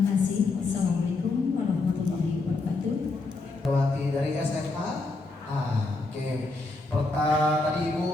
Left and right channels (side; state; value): right; quieter; 3.4 dB